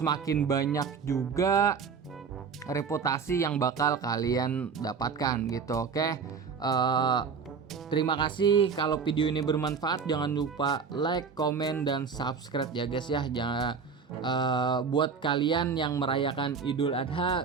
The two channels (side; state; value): left; quieter; 5.8 dB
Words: banyak juga reputasi yang bakal kalian dapatkan gitu, oke? Terima kasih. Kalau video ini bermanfaat, jangan lupa like, komen, dan subscribe ya guys ya. Jangan buat kalian yang merayakan Idul